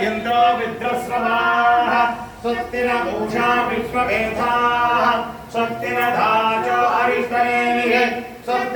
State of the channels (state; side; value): identical; both; correlation 1.00